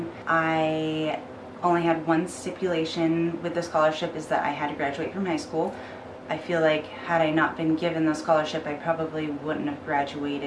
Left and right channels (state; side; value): identical; both; correlation 1.00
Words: I only had one stipulation with the scholarship, is that I had to graduate from high school. I feel like had I not been given the scholarship, I probably wouldn't have